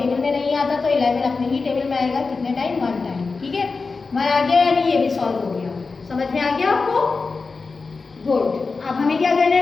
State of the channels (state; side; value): quieter; right; 4.3 dB